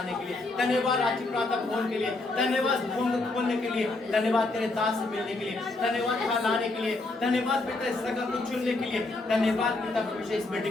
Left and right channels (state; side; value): quieter; right; 3.1 dB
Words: के लिए, धन्यवाद राज्य प्रार्थना भवन के लिए, धन्यवाद भवन खोलने के लिए, धन्यवाद तेरे दास से मिलने के लिए, धन्यवाद यहाँ लाने के लिए, धन्यवाद पिता इस जगह को चुनने के लिए, धन्यवाद पिता परमेश्वर इस